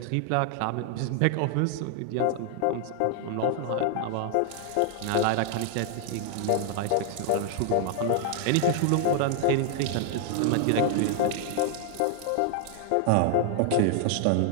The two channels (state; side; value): different; both; correlation 0.00